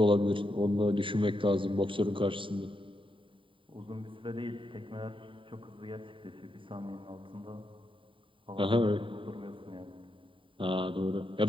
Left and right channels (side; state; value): left; late; 0.25 ms